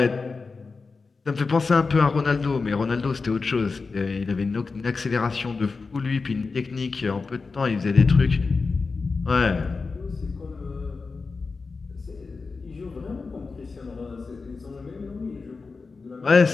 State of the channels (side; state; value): right; quieter; 4.3 dB